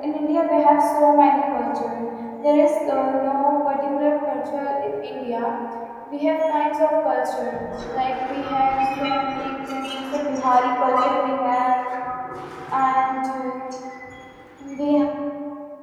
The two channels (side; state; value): both; identical; correlation 1.00